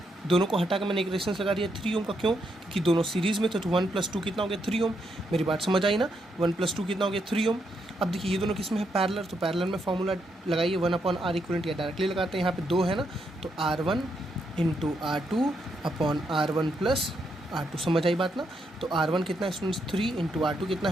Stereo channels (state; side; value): normal; both; correlation 0.79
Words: दोनों को हटा के मैंने एक रेजिस्टेंस लगा दिया 3 ओम का। क्यों, क्योंकि दोनों सीरीज़ में थे। तो 1 + 2 कितना हो गया 3 ओम। मेरी बात समझ आई ना। 1 + 2 कितना हो गया 3 ओम। अब देखिए ये दोनों किस में है, पैरेलल। तो पैरेलल में फॉर्मूला लगाइए 1/R equivalent, या डायरेक्टली लगाते हैं। यहाँ पे 2 है ना, तो R1 × R2 upon R1 + R2। समझ आई बात ना। तो R1 कितना है स्टूडेंट्स 3 × R2 कितना